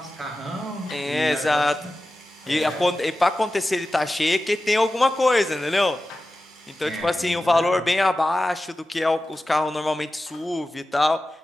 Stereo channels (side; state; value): both; normal; correlation 0.94